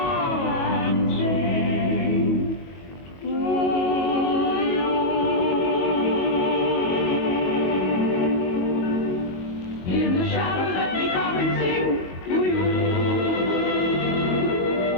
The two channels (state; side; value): late; right; 22 ms